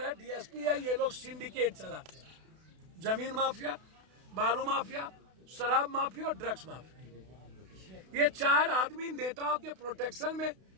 है, डीएसपी है, ये लोग सिंडिकेट चलाते हैं। जमीन माफिया, बालू माफिया, शराब माफिया और ड्रग्स माफिया, ये 4 आदमी नेताओं के प्रोटेक्शन में।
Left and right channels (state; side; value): late; left; 32 ms